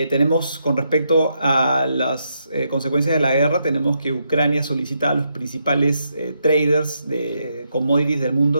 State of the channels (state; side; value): inverted; both; correlation -0.80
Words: con respecto a las consecuencias de la guerra, tenemos que Ucrania solicita a los principales traders de commodities del